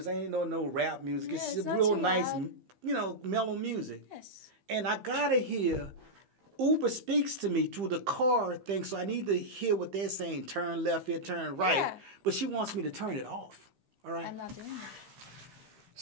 I ain't know no rap music. Yeah, it's real nice, mellow music. Yes. And I gotta hear. Uber speaks to me through the car thing, so I need to hear what they're saying. Turn left here, turn right. Yeah. But she wants me to turn it off. All right. I'm not doing that.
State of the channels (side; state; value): left; late; 15 ms